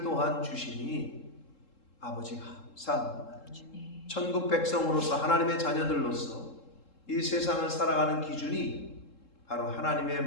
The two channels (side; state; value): right; late; 3.7 ms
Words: 또한 주시니 아버지 감사합니다. 주님. 천국 백성으로서 하나님의 자녀들로서 이 세상을 살아가는 기준이 바로 하나님의